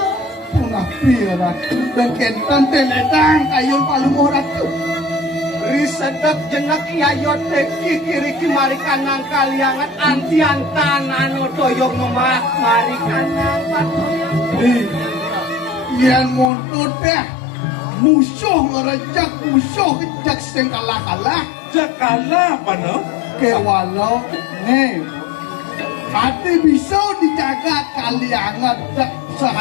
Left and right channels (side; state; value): right; drops out; at 16.5 s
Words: punah pirat dan kentan teledang ayun paling orang tu. Risedek jenak yayot teki kiri mari kanang kaliangan antian tanano toyong memak mari kanang patoyang. Yang montut dah musuh ngerejak musuh kejak sing kalah-kalah Jakala apa no? ke walau nih hati bisa dijaga kaliangan tak